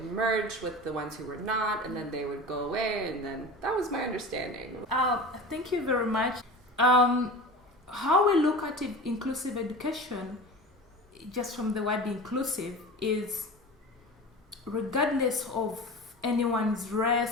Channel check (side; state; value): both; normal; correlation 0.33